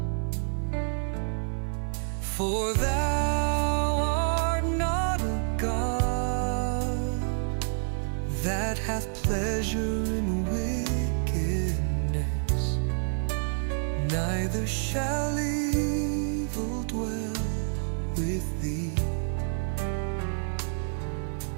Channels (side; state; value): left; silent; 59 dB below the other